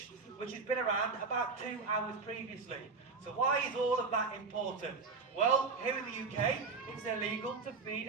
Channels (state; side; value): quieter; left; 4.6 dB